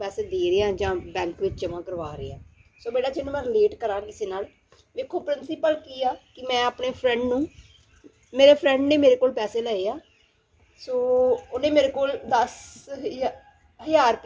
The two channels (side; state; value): both; identical; correlation 1.00